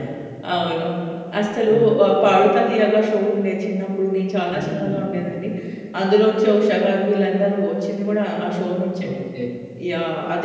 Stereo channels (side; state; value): both; identical; correlation 1.00